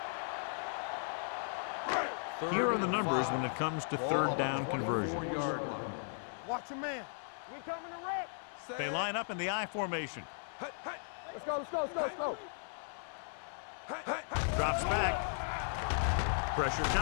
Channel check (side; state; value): right; silent; digital silence